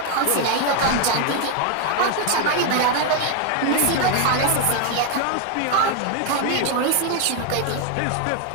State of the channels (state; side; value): different; both; correlation 0.01